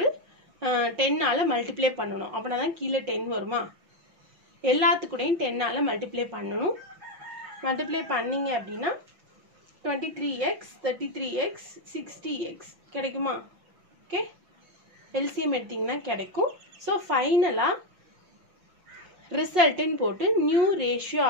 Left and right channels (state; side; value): late; left; 5.9 ms